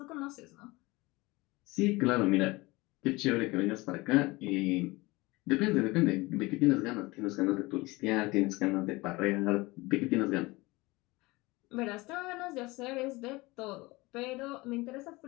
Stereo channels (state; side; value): quieter; right; 22.2 dB